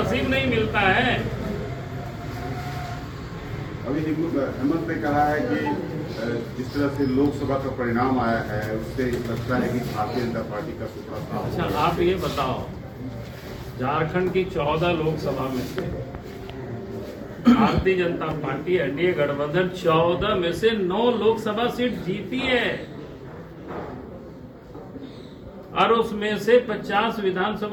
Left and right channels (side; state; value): both; identical; correlation 1.00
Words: नहीं मिलता है। अभी हेमंत ने कहा है कि जिस तरह से लोकसभा का परिणाम आया है उससे लगता है कि भारतीय जनता पार्टी का सूत्रा साफ। अच्छा आप ये बताओ, झारखंड की 14 लोकसभा में से भारतीय जनता पार्टी एनडीए गठबंधन 14 में से 9 लोकसभा सीट जीती है, और उसमें से 50